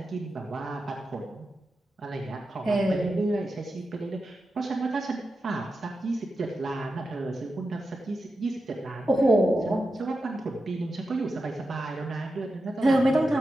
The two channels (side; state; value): both; normal; correlation 0.90